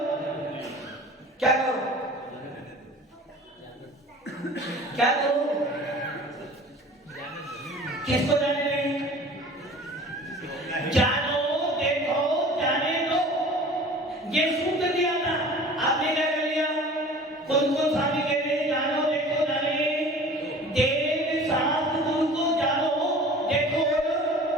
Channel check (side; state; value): both; normal; correlation 0.43